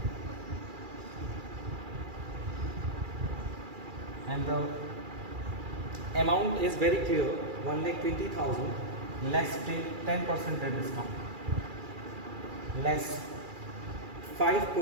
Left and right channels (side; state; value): left; late; 2.4 ms